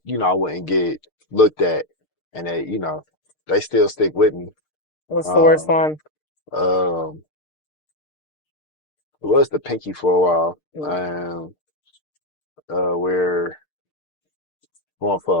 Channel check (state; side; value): late; right; 6.6 ms